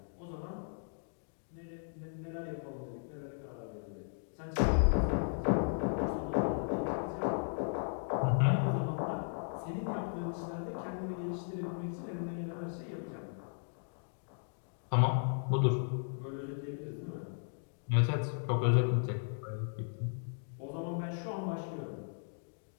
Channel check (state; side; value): silent; right; digital silence